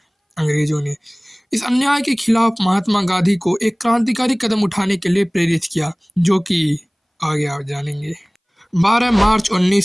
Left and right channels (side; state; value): both; identical; correlation 1.00